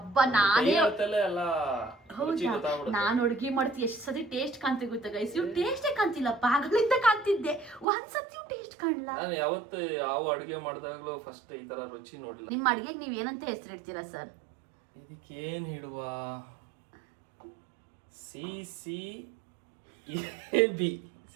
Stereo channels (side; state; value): left; drops out; at 7.9 s